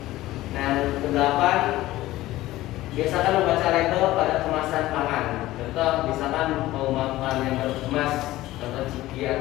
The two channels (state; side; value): quieter; right; 16.5 dB